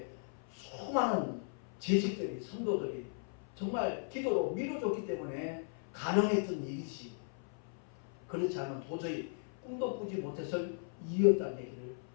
수많은 재직들이, 성도들이 정말 기도로 밀어줬기 때문에 가능했던 일이지, 그렇지 않으면 도저히 꿈도 꾸지 못해서 이었다는 얘기를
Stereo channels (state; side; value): silent; right; 53 dB below the other